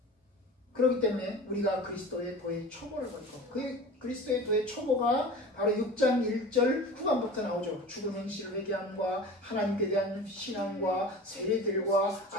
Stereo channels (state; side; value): normal; both; correlation 0.37